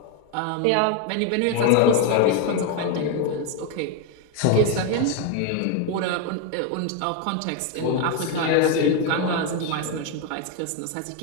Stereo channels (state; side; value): different; both; correlation 0.02